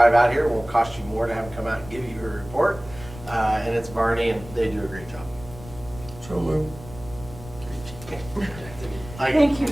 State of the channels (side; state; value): left; noise; rumble, 16 dB below the sound